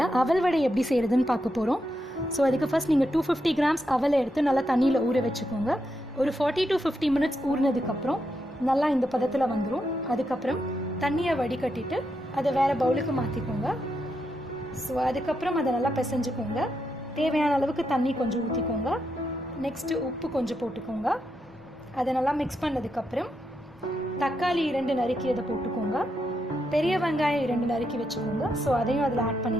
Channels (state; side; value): normal; both; correlation 0.83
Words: அவல் வடை எப்படி செய்கிறதுன்னு பார்க்க போகிறோம். ஸோ அதுக்கு ஃபர்ஸ்ட் நீங்கள் 250 கிராம்ஸ் அவலை எடுத்து நல்லா தண்ணியில் ஊற வச்சுக்கோங்க. ஒரு 40 to 50 மினிட்ஸ் ஊறினதுக்கப்புறம் நல்லா இந்த பதத்தில் வந்துடும். அதுக்கப்புறம் தண்ணியை வடிகட்டிட்டு அதை வேறு பவுலுக்கு மாற்றிக்கோங்க. ஸோ அதுக்கப்புறம் அதை நல்லா பிசைஞ்சுக்கோங்க. தேவையான அளவுக்கு தண்ணி கொஞ்சம் ஊற்றிக்கோங்க. நெக்ஸ்ட்டு உப்பு கொஞ்சம் போட்டுக்கோங்க. அதை நல்லா மிக்ஸ் பண்ணதுக்கப்புறம் தக்காளி 2 நறுக்கி அதை போட்டுக்கோங்க. பெரிய வெங்காயம் 2 நறுக்கி வச்சுக்கோங்க. ஸோ அதையும் அதில் ஆட்